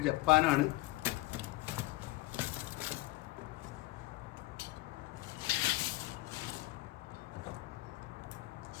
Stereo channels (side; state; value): right; quieter; 20.3 dB